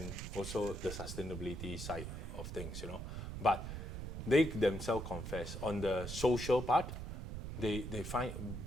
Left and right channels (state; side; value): noise; right; rumble, 6 dB below the sound